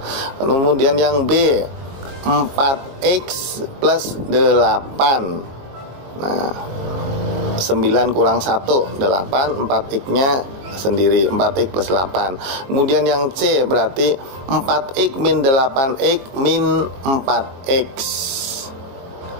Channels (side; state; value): left; late; 22 ms